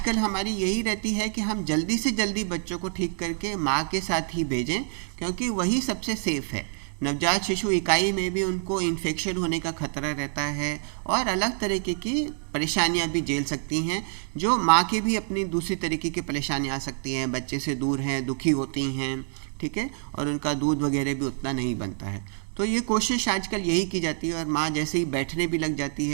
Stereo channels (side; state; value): left; silent; 60 dB below the other